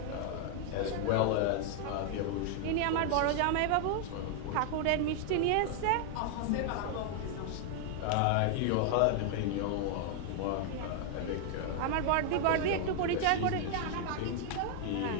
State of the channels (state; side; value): different; both; correlation 0.00